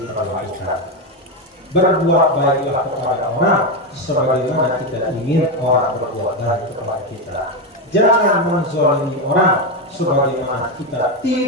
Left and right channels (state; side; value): normal; both; correlation 0.10